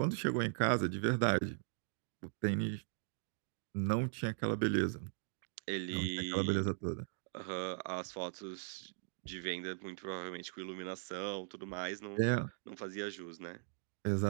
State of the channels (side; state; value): left; silent; digital silence